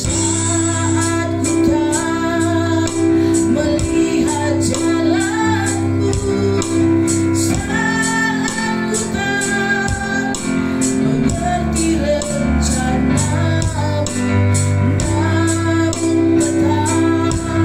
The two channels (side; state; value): both; identical; correlation 1.00